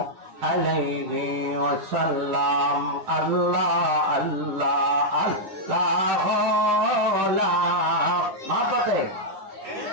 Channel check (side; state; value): left; late; 9.6 ms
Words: আলাইহি ওয়াসাল্লাম। আল্লাহ আল্লাহ আল্লাহ লা মাপাতে